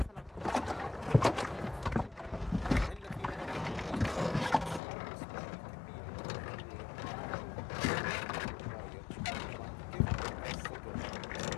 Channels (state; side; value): drops out; right; at 4.8 s